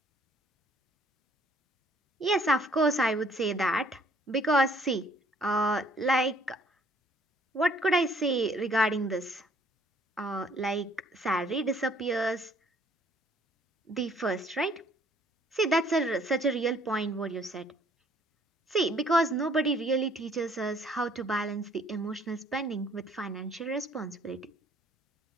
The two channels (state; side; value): normal; both; correlation 0.61